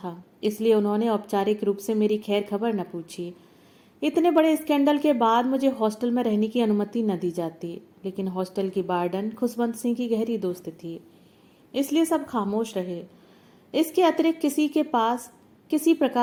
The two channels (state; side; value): identical; both; correlation 1.00